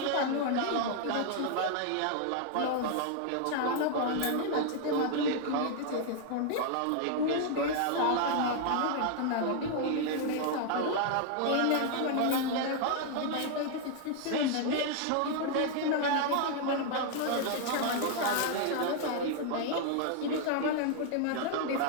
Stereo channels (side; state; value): both; different; correlation 0.00